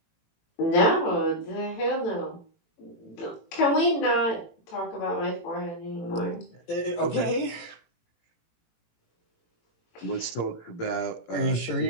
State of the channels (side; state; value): right; late; 18 ms